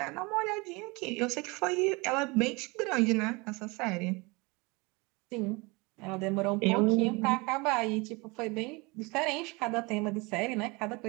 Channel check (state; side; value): quieter; left; 26.1 dB